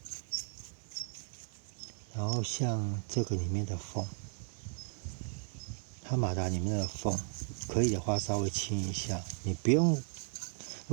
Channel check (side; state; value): left; silent; 54 dB below the other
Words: 然后像这个里面的缝，它马达里面的缝，可以的话稍微清一下。你不用，